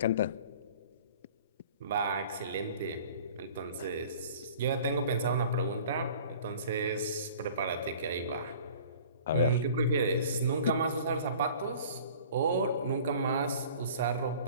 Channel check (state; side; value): inverted; both; correlation -0.47